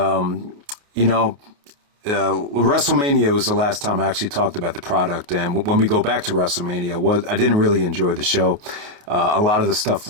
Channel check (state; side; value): late; left; 28 ms